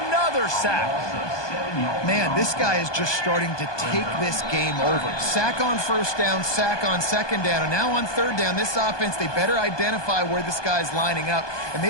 Another sack. Man, this guy is just starting to take this game over. Sack on first down, sack on second down, and now on third down, this offense, they better identify where this guy's lining up, and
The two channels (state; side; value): late; right; 1.2 ms